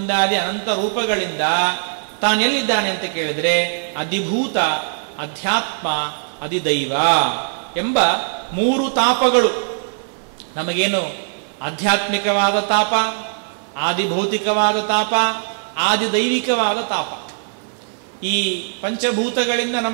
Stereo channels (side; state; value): left; silent; 59 dB below the other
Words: ಅನಂತ ರೂಪಗಳಿಂದ ತಾನೆಲ್ಲಿದ್ದಾನೆ ಅಂತ ಕೇಳಿದ್ರೆ ಅಧಿಭೂತ, ಅಧ್ಯಾತ್ಮ, ಅಧಿದೈವ ಎಂಬ 3 ತಾಪಗಳು. ನಮಗೇನು ಆಧ್ಯಾತ್ಮಿಕವಾದ ತಾಪ, ಆದಿಭೌತಿಕವಾದ ತಾಪ, ಆದಿದೈವಿಕವಾದ ತಾಪ. ಈ ಪಂಚಭೂತಗಳಿಂದ